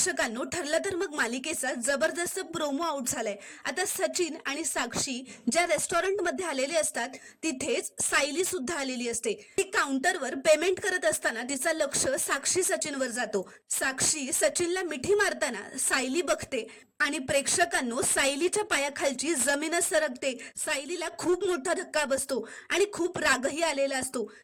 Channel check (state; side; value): identical; both; correlation 1.00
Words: ठरलं तर मग मालिकेचा जबरदस्त प्रोमो आउट झालाय। आता सचिन आणि साक्षी ज्या रेस्टॉरंट मध्ये आलेले असतात तिथेच सायली सुद्धा आलेली असते। ती काउंटरवर पेमेंट करत असताना तिचं लक्ष साक्षी सचिनवर जातो। साक्षी सचिनला मिठी मारताना सायली बघते आणि प्रेक्षकांनो, सायलीच्या पायाखालची जमीनच सरकते। सायलीला खूप मोठा धक्का बसतो आणि खूप रागही आलेला असतो।